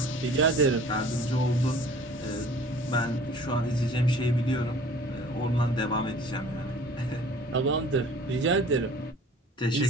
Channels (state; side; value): normal; both; correlation 0.48